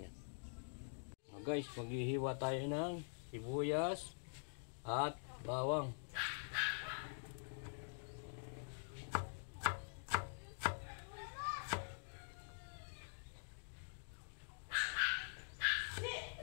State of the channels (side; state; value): right; silent; digital silence